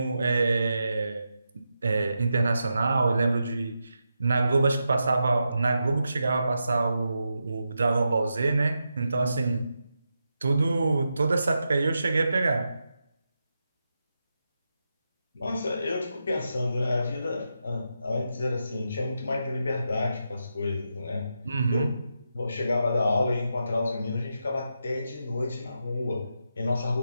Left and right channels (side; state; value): both; inverted; correlation -0.87